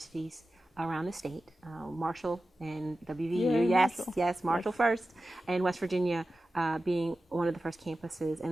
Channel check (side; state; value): both; normal; correlation 0.94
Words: around the state, Marshall and WVU, yes, Marshall first, and West Virginia being one of the first campuses,